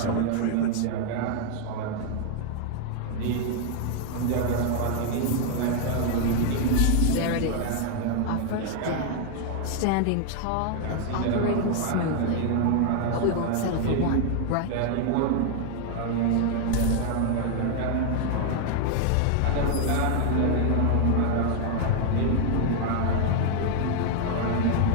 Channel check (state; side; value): different; both; correlation 0.00